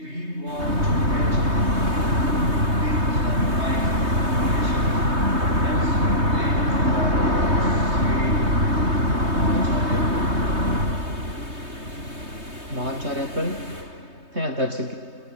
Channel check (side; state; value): left; late; 3.2 ms